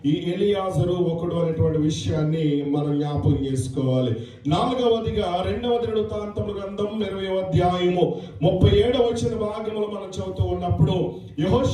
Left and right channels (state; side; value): identical; both; correlation 1.00